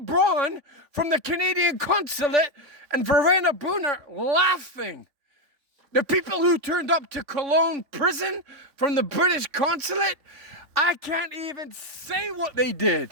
Braun from the Canadian consulate and Verena Brunner laughing. The people who turned up to Cologne prison from the British consulate, I can't even say what they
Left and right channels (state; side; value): late; left; 3.6 ms